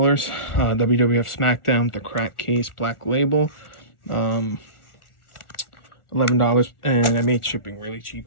WWF SmackDown, the crack case, black label. $11, and I made shipping really cheap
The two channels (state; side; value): late; right; 1.4 ms